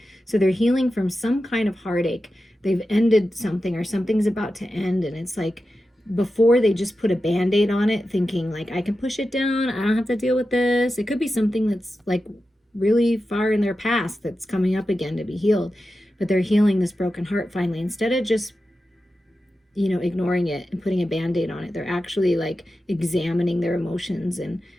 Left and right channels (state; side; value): normal; both; correlation 0.92